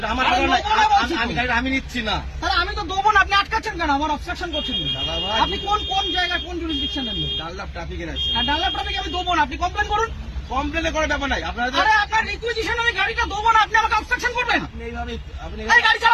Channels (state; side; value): identical; both; correlation 1.00